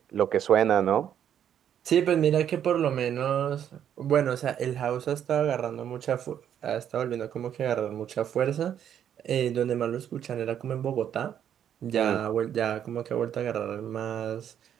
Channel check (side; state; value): left; quieter; 9.5 dB